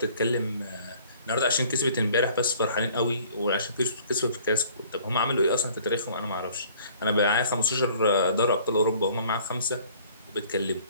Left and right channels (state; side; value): inverted; both; correlation -0.54